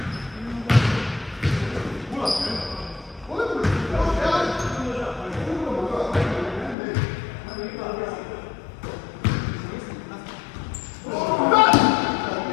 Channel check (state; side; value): drops out; right; at 6.8 s